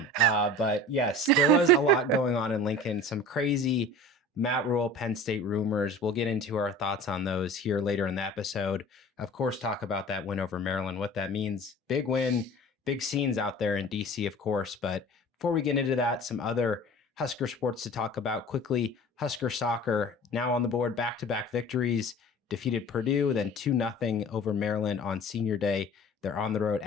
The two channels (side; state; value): both; normal; correlation 0.41